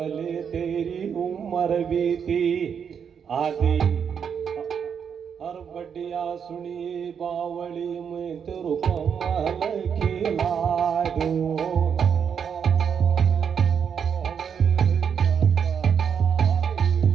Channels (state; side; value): quieter; left; 7.3 dB